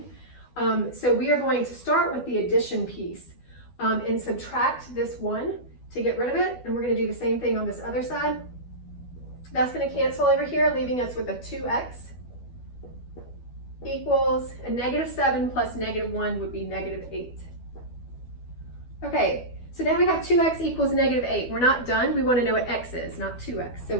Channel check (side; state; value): right; late; 12 ms